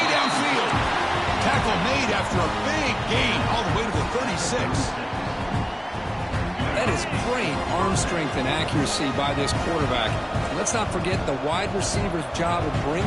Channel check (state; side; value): identical; both; correlation 1.00